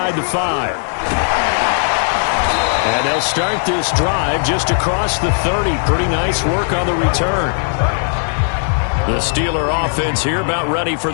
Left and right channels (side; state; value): right; silent; digital silence